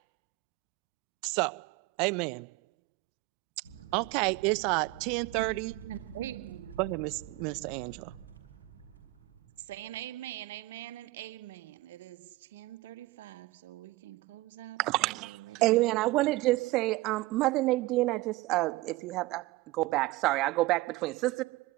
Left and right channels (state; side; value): quieter; left; 19.7 dB